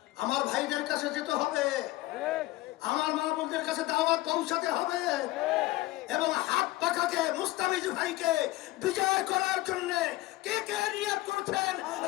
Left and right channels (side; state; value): right; quieter; 18.1 dB